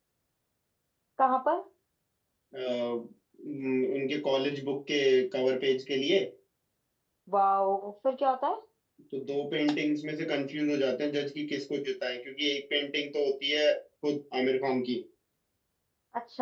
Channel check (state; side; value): identical; both; correlation 1.00